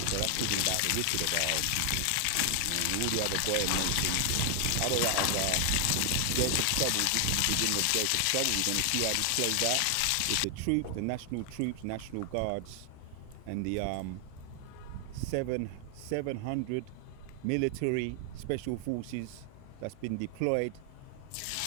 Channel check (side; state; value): both; different; correlation 0.00